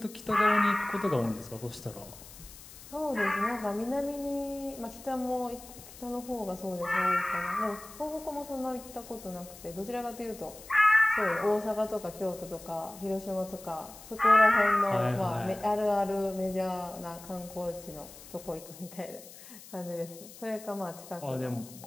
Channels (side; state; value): left; noise; hiss, 17 dB below the sound